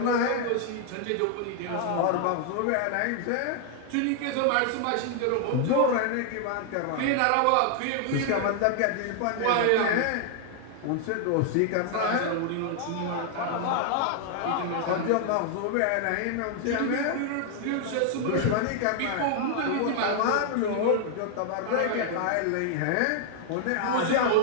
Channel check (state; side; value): different; both; correlation 0.00